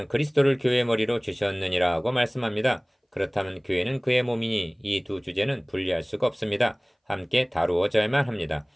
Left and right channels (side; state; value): both; identical; correlation 1.00